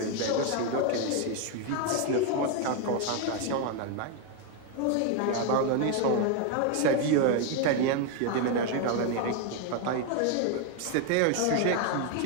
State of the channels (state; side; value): different; both; correlation 0.01